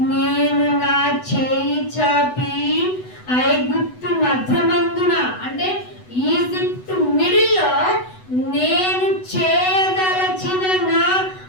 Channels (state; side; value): late; right; 8.0 ms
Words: నేను నా చేయి చాపి ఐగుప్తు మధ్యమందున, అంటే ఈజిప్ట్ మిడిల్లో నేను చేయదలచిన నా